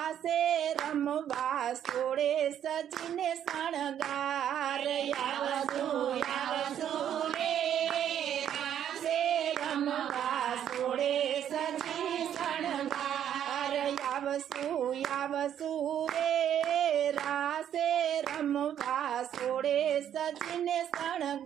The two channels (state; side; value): quieter; left; 9.9 dB